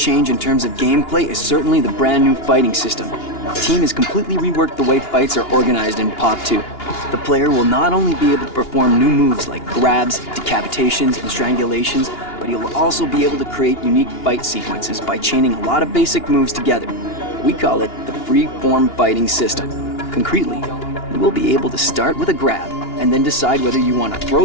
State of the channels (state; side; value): late; right; 2.8 ms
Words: in terms of gameplay is certainly the brand new fighting system. The team has completely reworked the way fights are organized in Pop 2. The player will not only be able to perform new moves like grabs, decapitations, and strangulations, but he will also be able to create unique fight sequences by chaining a lot of basic moves together. We call it the free-form fighting system. Concretely, you will be able to start with a grab and then decide whether you want to